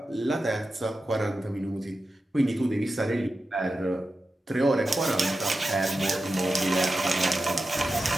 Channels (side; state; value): both; normal; correlation 0.91